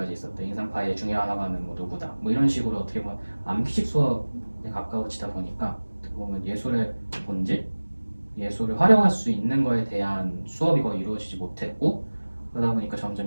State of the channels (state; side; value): inverted; both; correlation -1.00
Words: 있었대, 인상파의 중요한 화가는 뭐 누구다, 뭐 이런 식으로 어떻게 보면 암기식 수업에 가까워지다 보니까 어떻게 보면 예술의 본질, 예술을 활용할 수 있는 거에 대한 수업이 거의 이루어지지 못했고, 그러다 보니까